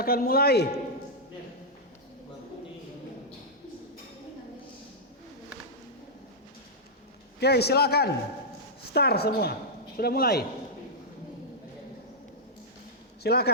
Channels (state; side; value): normal; both; correlation -0.08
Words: akan mulai. Oke, silakan. Start semua. Sudah mulai.